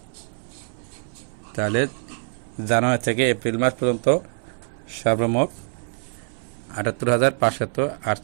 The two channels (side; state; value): left; silent; 62 dB below the other